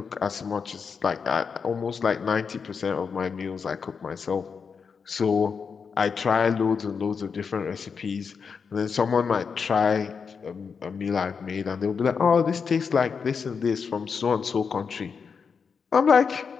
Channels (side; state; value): right; quieter; 5.8 dB